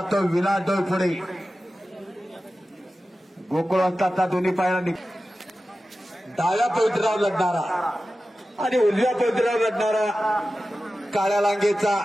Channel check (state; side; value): normal; both; correlation 0.94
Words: तो विलास डोईपुढे गोकुळ असताचा दोन्ही पायाला डाव्या पवित्रावर लढणारा आणि उजव्या पवित्रावर लढणारा काळ्या लांगेचा